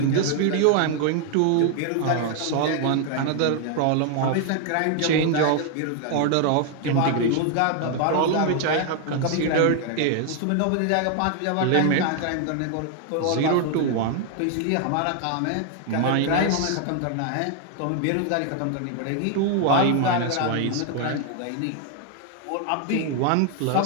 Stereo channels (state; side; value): different; both; correlation 0.00